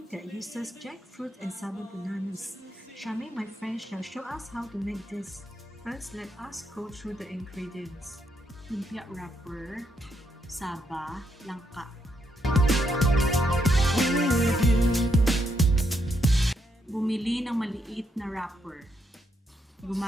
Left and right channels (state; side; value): normal; both; correlation 0.78